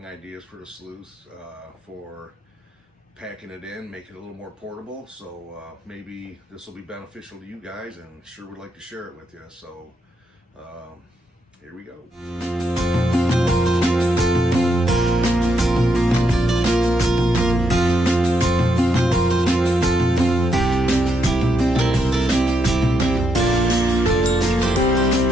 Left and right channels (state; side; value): normal; both; correlation 0.78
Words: ideas for the sluice for packing it in, make it a little more portable. So maybe this will be beneficial to you guys, and sure would like to share it with you. So here we go.